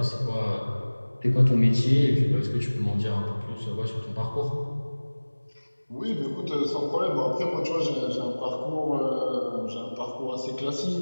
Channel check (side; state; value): both; inverted; correlation -1.00